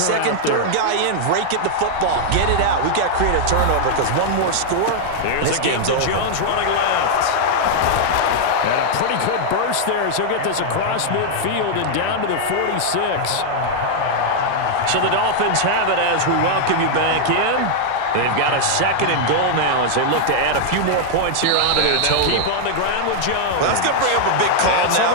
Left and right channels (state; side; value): different; both; correlation -0.01